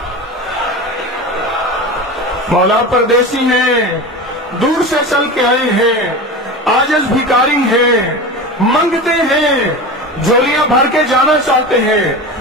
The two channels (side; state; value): both; normal; correlation 0.28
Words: مولا پردیسی ہیں، دور سے چل کے آئے ہیں، عاجز بھکاری ہیں، منگتے ہیں، جھولیاں بھر کے جانا چاہتے ہیں،